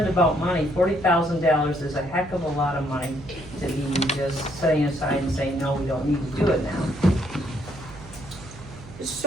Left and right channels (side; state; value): right; noise; hum, 17 dB below the sound